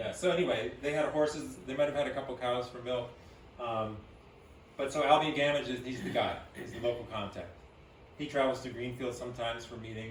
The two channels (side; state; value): both; identical; correlation 1.00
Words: So anyway, they had horses. They might have had a couple cows for milk. But so Albion Gamage he's the guy. He's the local contact. he travels to Greenfield sometimes for